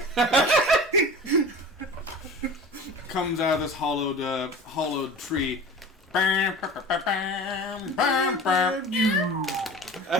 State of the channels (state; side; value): normal; both; correlation 0.37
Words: Comes out of this hollowed tree. I